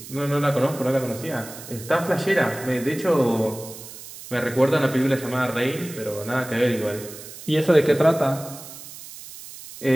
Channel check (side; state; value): right; noise; hiss, 15 dB below the sound